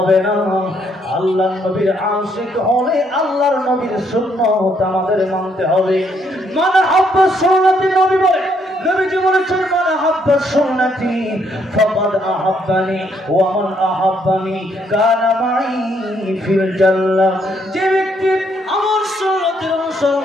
না, আল্লাহর নবীর আশিক হলে আল্লাহর নবীর সুন্নাত আমাদের মানতে হবে। মান হাব্বা সুন্নতি, নবী বলে, নবীজি বলেছেন, মান হাব্বা সুন্নতি ফাকাদ আহাব্বানি ওয়া মান আহাব্বানি কানা মাই ফিল জান্নাহ। যে ব্যক্তি আমার সুন্নতের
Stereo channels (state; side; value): normal; both; correlation 0.71